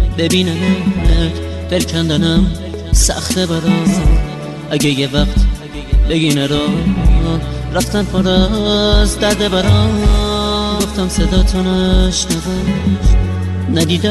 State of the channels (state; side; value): identical; both; correlation 1.00